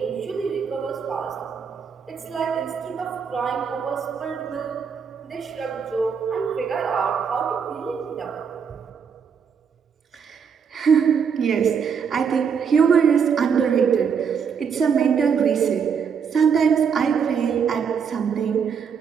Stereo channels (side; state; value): left; quieter; 6.7 dB